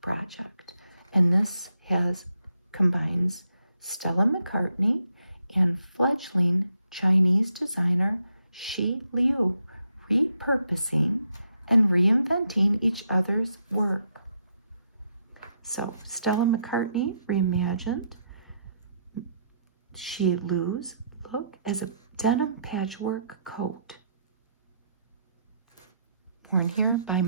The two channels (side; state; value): both; inverted; correlation -0.77